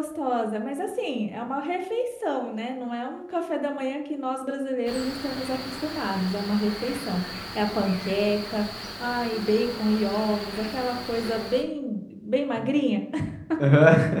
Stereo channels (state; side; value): identical; both; correlation 1.00